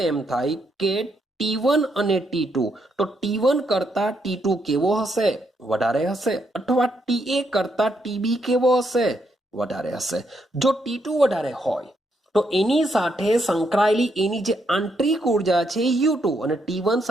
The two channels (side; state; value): both; normal; correlation 0.77